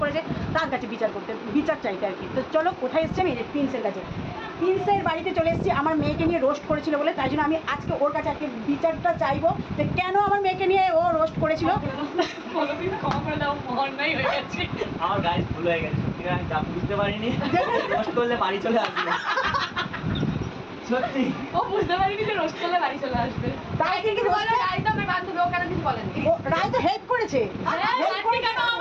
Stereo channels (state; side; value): identical; both; correlation 1.00